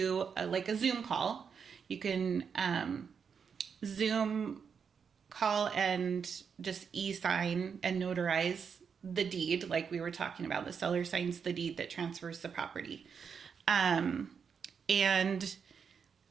like a Zoom call. You can Zoom call and just e-sign and notarize the deed, like we were talking about. The seller signs the deed that transfers the property. And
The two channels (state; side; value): quieter; left; 6.5 dB